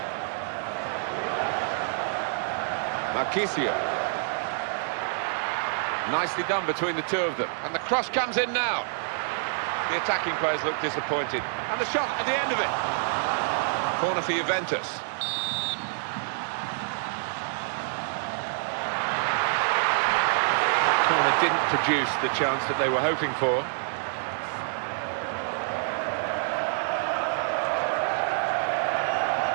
Marchisio. Nicely done between the two of them. And the cross comes in now. The attacking players look disappointed. And the shot at the end of it. Corner for Juventus. Corner didn't produce the chance that they were hoping for.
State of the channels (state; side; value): silent; left; digital silence